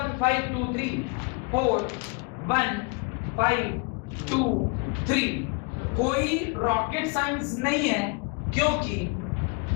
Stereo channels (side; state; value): right; quieter; 31.6 dB